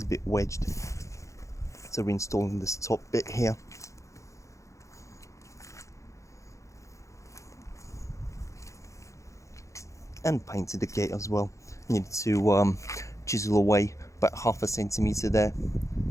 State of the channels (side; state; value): right; late; 0.15 ms